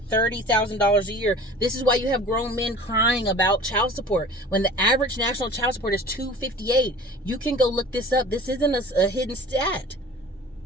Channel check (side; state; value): both; normal; correlation 0.43